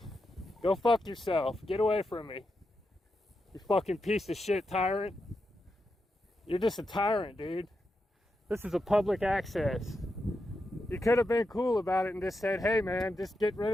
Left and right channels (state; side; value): normal; both; correlation 0.87